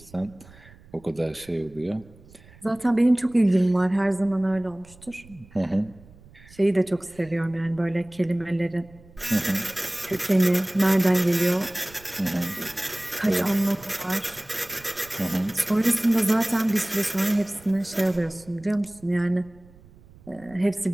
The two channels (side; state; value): right; noise; rumble, 24 dB below the sound